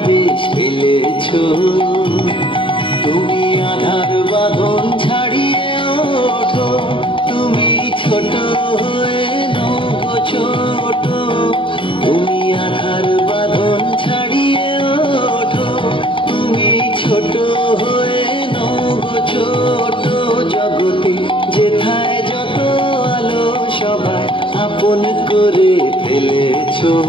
ফেলেছো। তুমি আধার বাঁধন ছাড়িয়ে ওঠো, তুমি ছোট হয়ে নও গো ছোট। তুমি আধার বাঁধন ছাড়িয়ে ওঠো, তুমি ছোট হয়ে নও গো ছোট। জগতে যেথায় যত আলো সবাই আপন করে ফেলেছো,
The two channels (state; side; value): late; right; 0.25 ms